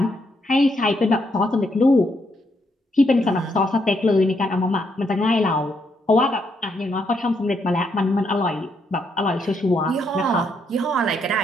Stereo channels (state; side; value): normal; both; correlation 0.76